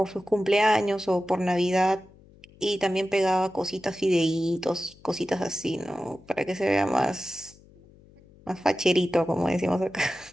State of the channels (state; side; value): noise; left; hum, 25 dB below the sound